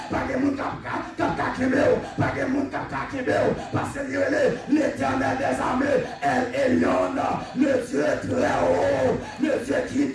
pas de monde qui a kembe, pas de monde qui a kembe. Parce que l'Éternel des armées, El Elyon, le Dieu très haut, le Dieu qui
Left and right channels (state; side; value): identical; both; correlation 1.00